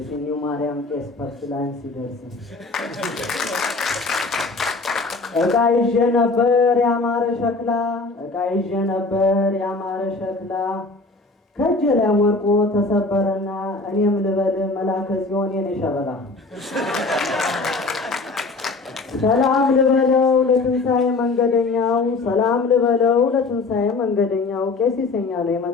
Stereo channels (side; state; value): right; quieter; 3.6 dB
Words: ማርያም ቄስ ፐርስላን ሲደርስ እቃ ይዤ ነበር ያማረ ሸክላ ከእጄ ላይ ወርቆ ተሰበረና እኔም ልበል መላከ ጽዮን የኔ ሸበላ ሰላም ልበለው ለትንሣኤ መንገደኛው ቄስ ይሰኛል